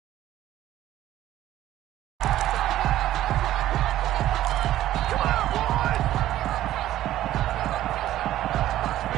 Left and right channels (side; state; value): left; quieter; 13.6 dB